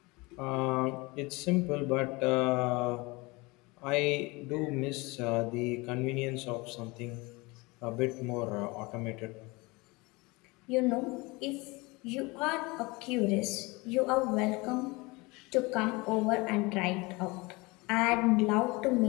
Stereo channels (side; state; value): right; quieter; 24.7 dB